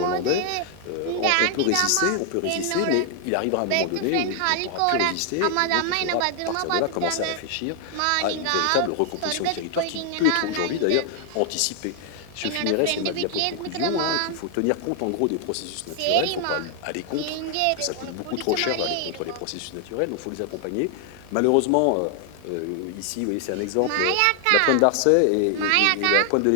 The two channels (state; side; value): different; both; correlation 0.00